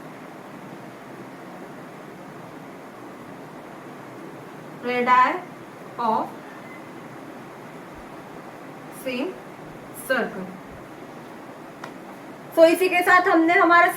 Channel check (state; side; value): identical; both; correlation 1.00